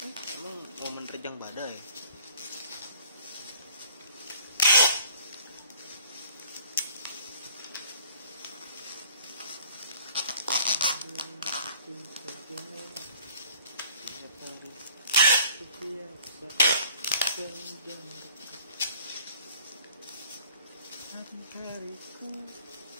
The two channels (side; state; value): both; inverted; correlation -0.53